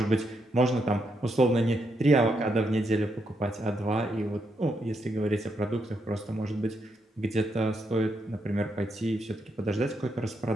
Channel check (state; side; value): normal; both; correlation 0.79